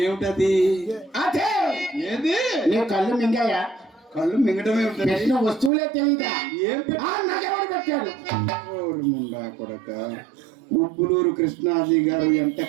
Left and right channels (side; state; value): left; drops out; at 5.7 s